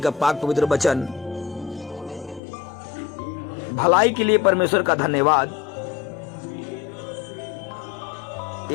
का पाक पवित्र वचन। भलाई के लिए परमेश्वर का धन्यवाद।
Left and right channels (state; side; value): drops out; right; at 2.4 s